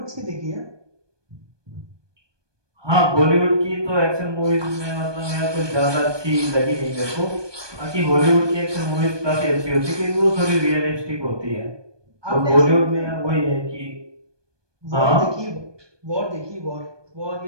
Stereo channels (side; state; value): left; late; 1.2 ms